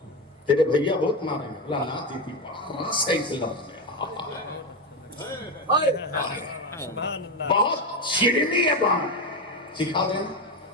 تیرے بھیا بہت ماریں گے۔ بولا نا دیدی بڑا صحیح لفظ ہے، سبحان اللہ. بہت شیرینی ہے بات، سکھا دینا۔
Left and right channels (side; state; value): both; normal; correlation 0.14